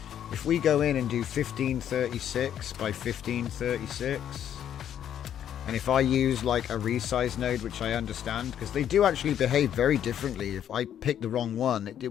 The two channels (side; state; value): right; quieter; 9.9 dB